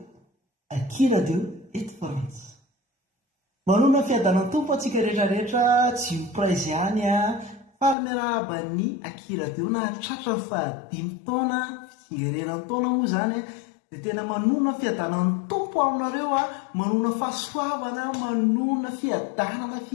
Aki radio eto Frantsa. Manona fiadanany tompo atsika rehetrarehetra tsy ho praizy ihany a falmerabany Aki radio na tratra ny fahadimy taona fitsingerenany taona moa zany dia tena manona fiadanany tompo aminareo a, manona fahasoavana, manona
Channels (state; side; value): drops out; right; at 8.0 s